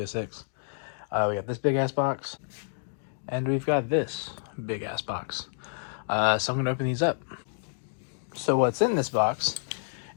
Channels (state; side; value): silent; right; digital silence